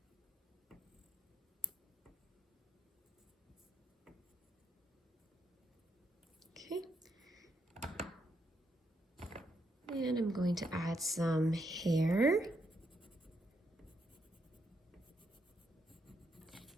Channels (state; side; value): normal; both; correlation 0.78